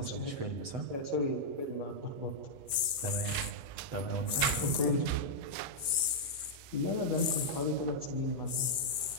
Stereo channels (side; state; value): left; late; 7.7 ms